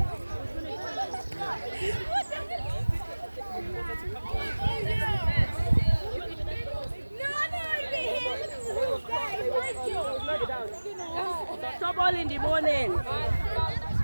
Stop all in the morning.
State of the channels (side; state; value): both; inverted; correlation -1.00